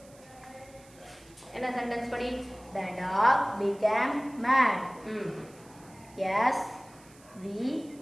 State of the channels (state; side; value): noise; right; hiss, 25 dB below the sound